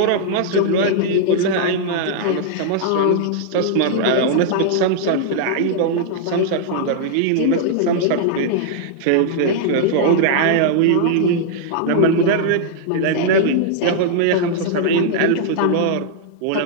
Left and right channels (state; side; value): different; both; correlation -0.01